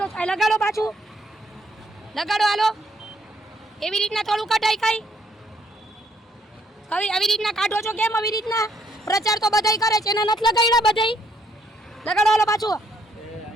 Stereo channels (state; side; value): normal; both; correlation 0.70